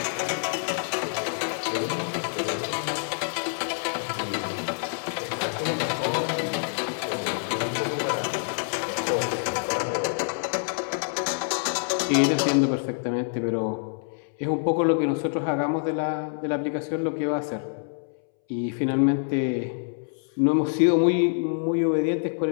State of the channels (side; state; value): right; silent; 61 dB below the other